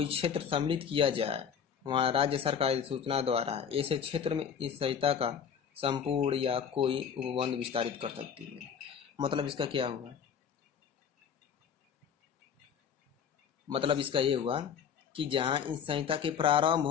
क्षेत्र सम्मिलित किया जाए वहां राज्य सरकार सूचना द्वारा ऐसे क्षेत्र में इस संहिता का संपूर्ण या कोई उपबंध विस्तारित कर सकती है। मतलब इसका क्या हुआ, मतलब इसका ये हुआ कि जहां इस संहिता के प्रारंभ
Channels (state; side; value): quieter; right; 7.5 dB